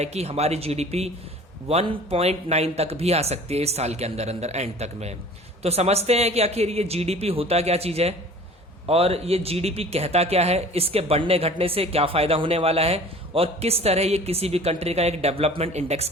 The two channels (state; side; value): normal; both; correlation 0.45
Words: कि हमारी जीडीपी 1.9 तक भी आ सकती है इस साल के अंदर अंदर एंड तक में। तो समझते हैं कि आखिर ये जीडीपी होता क्या चीज है और ये जीडीपी कहता क्या है, इसके बढ़ने घटने से क्या फायदा होने वाला है और किस तरह ये किसी भी कंट्री का एक डेवलपमेंट इंडेक्स